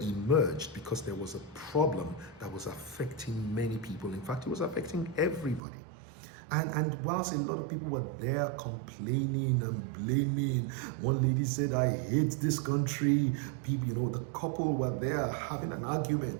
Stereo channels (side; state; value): left; drops out; at 5.6 s